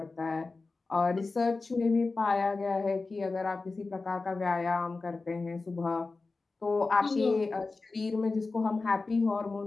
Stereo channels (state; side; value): quieter; right; 3.8 dB